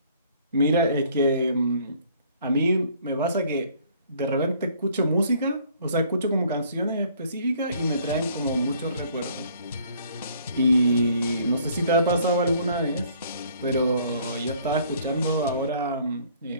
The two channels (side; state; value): both; inverted; correlation -0.59